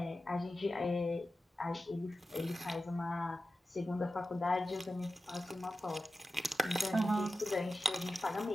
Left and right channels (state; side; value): normal; both; correlation 0.92